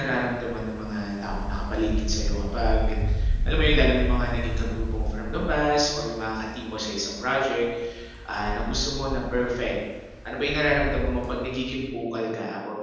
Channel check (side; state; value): both; identical; correlation 1.00